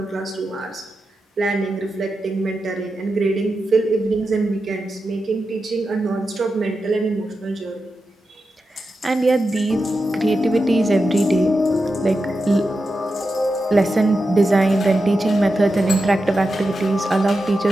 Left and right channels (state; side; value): normal; both; correlation 0.90